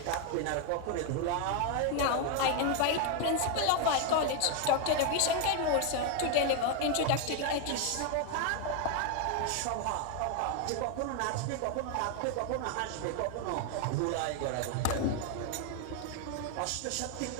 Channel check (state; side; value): different; both; correlation 0.01